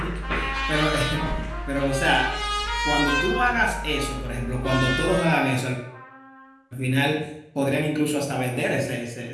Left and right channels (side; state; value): both; identical; correlation 1.00